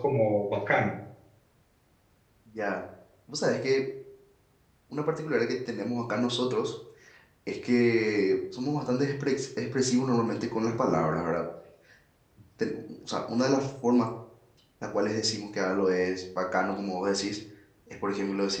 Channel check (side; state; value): both; identical; correlation 1.00